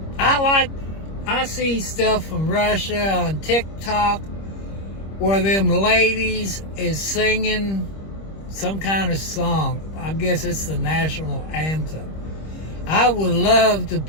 I see stuff from Russia on TikTok where them ladies is singing some kind of song. I guess it's the national anthem. I would love to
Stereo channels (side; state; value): right; late; 25 ms